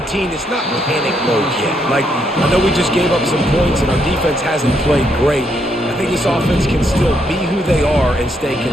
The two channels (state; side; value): normal; both; correlation 0.75